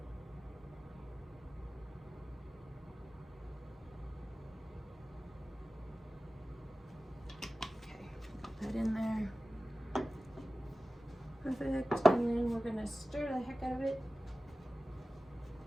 That in there. Perfect. And then we're gonna stir the heck out of it.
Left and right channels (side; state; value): both; normal; correlation 0.96